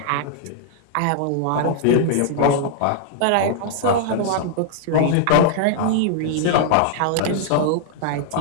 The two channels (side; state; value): both; different; correlation 0.00